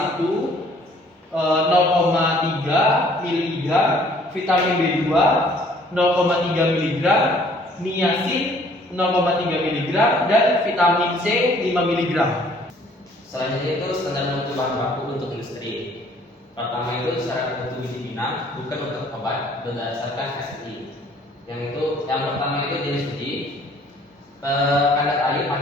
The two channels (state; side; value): normal; both; correlation 0.58